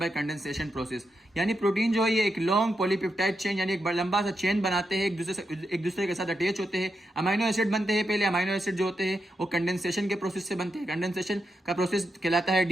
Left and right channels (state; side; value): normal; both; correlation 0.85